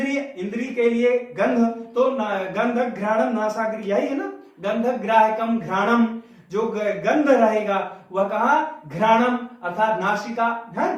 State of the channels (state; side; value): identical; both; correlation 1.00